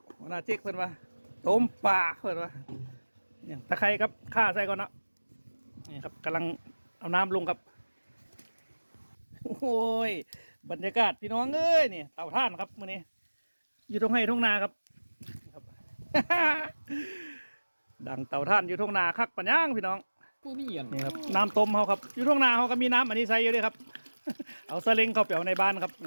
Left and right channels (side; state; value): both; inverted; correlation -1.00